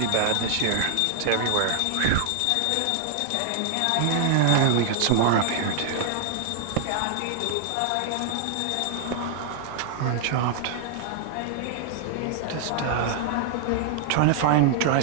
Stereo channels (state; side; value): different; both; correlation -0.01